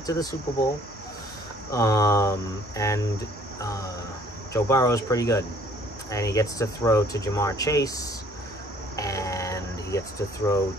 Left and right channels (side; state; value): both; normal; correlation 0.58